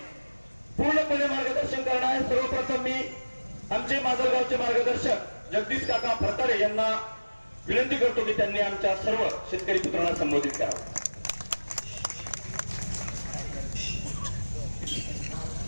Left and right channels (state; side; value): inverted; both; correlation -1.00